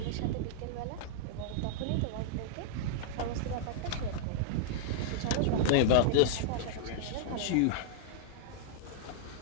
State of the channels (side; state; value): both; different; correlation -0.01